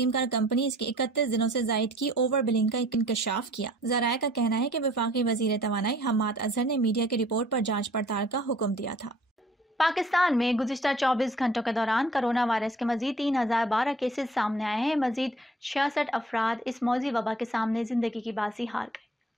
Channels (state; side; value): normal; both; correlation 0.54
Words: کار کمپنیز کی 31 دنوں سے زائد کی اوور بلنگ کا انکشاف کیا۔ ذرائع کا کہنا ہے کہ وفاقی وزیر توانائی حماد اظہر نے میڈیا کی رپورٹ پر جانچ پڑتال کا حکم دیا تھا۔ پاکستان میں گزشتہ 24 گھنٹوں کے دوران کرونا وائرس کے مزید 3012 کیسز سامنے آئے ہیں۔ مزید 66 افراد اس موذی وبا کے سامنے زندگی کی بازی ہار گئے۔